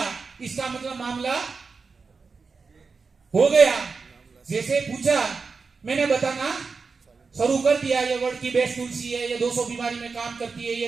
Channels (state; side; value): quieter; left; 4.8 dB